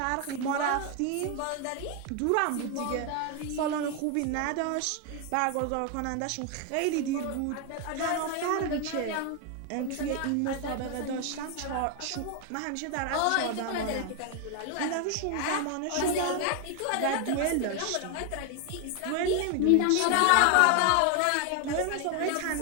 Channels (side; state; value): both; different; correlation 0.01